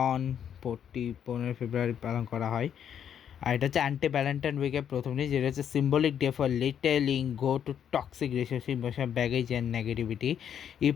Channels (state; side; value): quieter; right; 8.9 dB